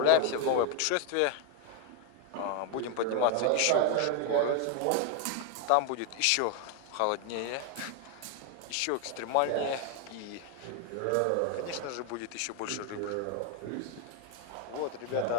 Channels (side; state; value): both; different; correlation 0.01